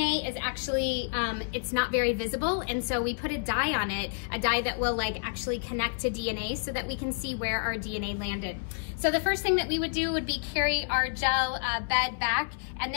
is actually, it's not very visible, and so we put a dye on it, a dye that will like actually connect to DNA so that we can see where our DNA landed. So the first thing that we would do would be carry our gel bed back and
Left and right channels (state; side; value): silent; right; 58 dB below the other